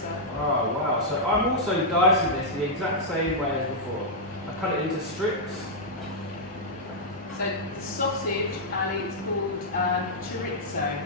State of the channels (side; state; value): both; normal; correlation -0.07